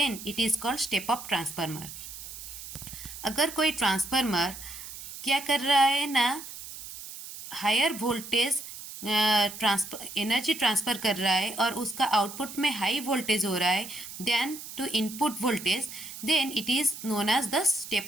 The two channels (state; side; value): noise; right; hiss, 12 dB below the sound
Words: it is called step up transformer. अगर कोई ट्रांसफार्मर क्या कर रहा है ना, हायर वोल्टेज एनर्जी ट्रांसफ़र कर रहा है और उसका आउटपुट में हाई वोल्टेज हो रहा है then to input voltage, then it is known as the